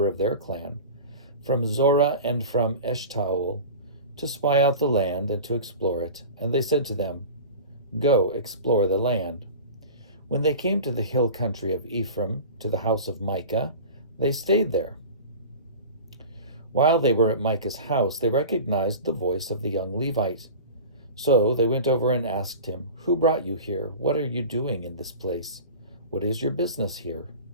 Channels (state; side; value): inverted; both; correlation -0.35